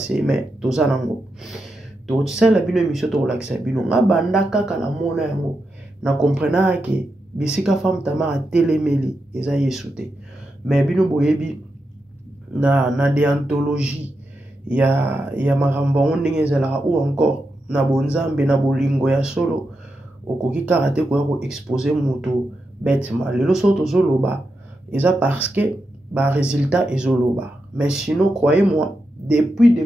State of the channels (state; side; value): normal; both; correlation 0.87